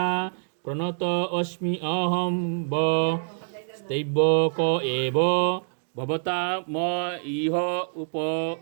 प्रणत अस्मि अहं व स्तैवक एव भवता म इह उप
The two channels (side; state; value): left; silent; digital silence